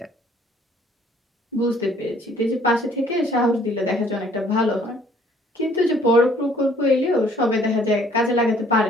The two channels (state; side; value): normal; both; correlation 0.59